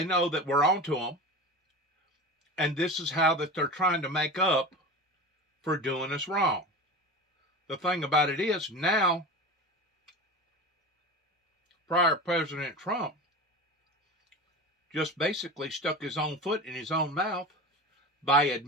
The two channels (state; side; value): normal; both; correlation 0.30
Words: know that we're onto them. And this is how that they're trying to make up for doing us wrong. The thing about it is, now, prior President Trump just basically stuck his own foot in his own mouth by